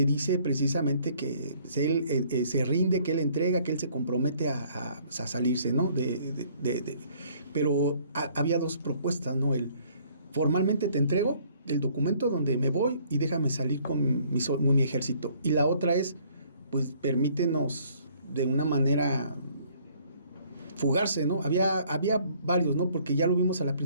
dice precisamente que él se rinde, que él entrega, que él se compromete a salirse, ¿no? Pero había dos propuestas, ¿no? Formalmente te entrego el documento donde me voy y déjame salir con mi ejército. Y la otra es, pues permítenos de una manera fugarse, ¿no? Había varios, ¿no? Porque ya lo vimos a la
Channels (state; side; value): inverted; both; correlation -0.61